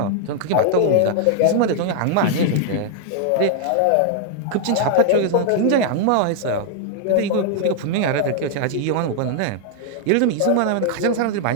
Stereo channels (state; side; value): different; both; correlation 0.00